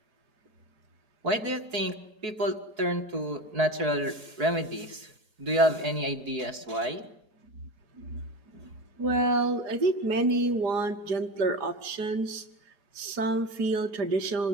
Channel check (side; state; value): left; late; 4.7 ms